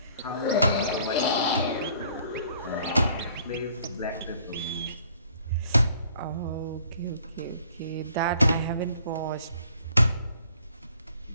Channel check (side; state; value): both; inverted; correlation -0.60